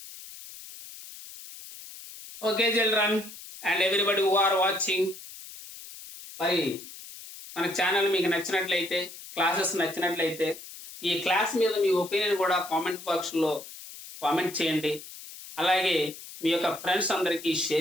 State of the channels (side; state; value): left; noise; hiss, 15 dB below the sound